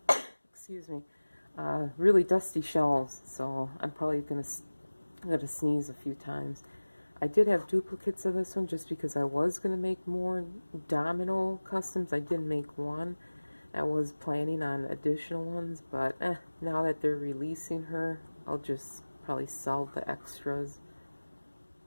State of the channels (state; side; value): inverted; both; correlation -1.00